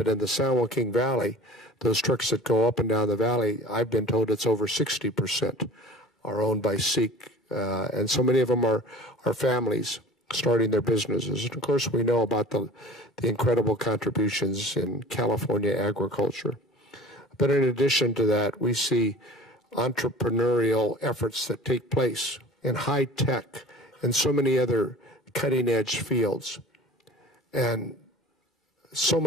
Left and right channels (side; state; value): both; normal; correlation 0.42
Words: in the San Joaquin Valley, those trucks that go up and down the valley, I've been told it's over 60% are owned by Sikh, and so many of them are families starting their businesses. And of course, we know about the incredible contributions in California agriculture. But in addition to that, we see entrepreneurial efforts that take place in high tech and so many other cutting-edge fields. And so